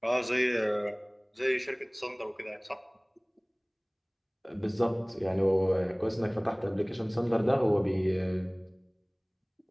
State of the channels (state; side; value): identical; both; correlation 1.00